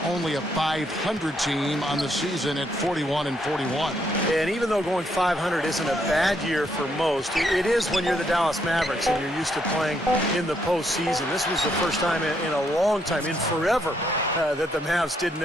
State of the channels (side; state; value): both; normal; correlation 0.74